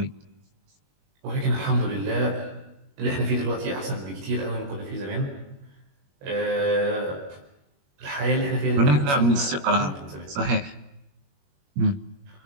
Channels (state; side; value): late; left; 21 ms